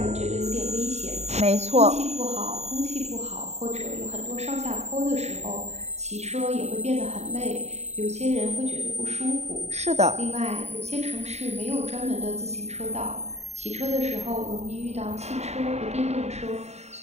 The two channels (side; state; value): left; late; 0.32 ms